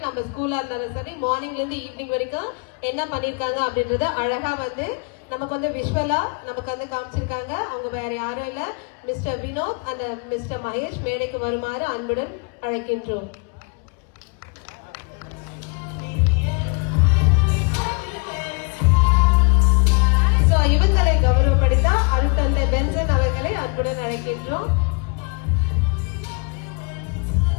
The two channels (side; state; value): right; quieter; 34.6 dB